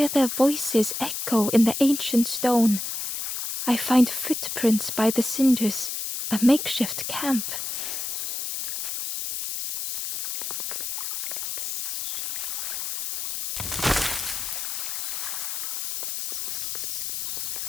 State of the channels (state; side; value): noise; left; hiss, 3 dB below the sound